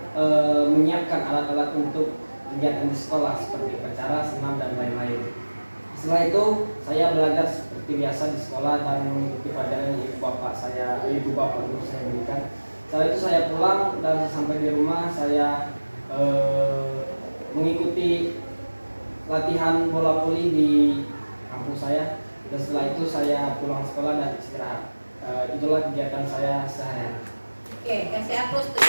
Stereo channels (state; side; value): inverted; both; correlation -1.00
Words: menyiapkan alat-alat untuk kegiatan di sekolah seperti upacara, senam dan lain-lain. Setelah itu saya belajar seperti biasa di sekolah dan mengikuti pelajaran ibu bapak guru saya berikan. Setelah itu saya pulang dan sampai di rumah saya mengikuti latihan bola voli di kampus saya. Dan setelah itu saya pulang sekolah dan istirahat. Itulah kegiatan saya sehari-hari. Oke, kasih aplaus tuh.